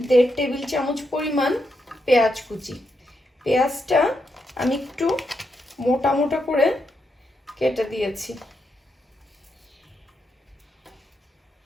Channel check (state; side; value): normal; both; correlation 0.83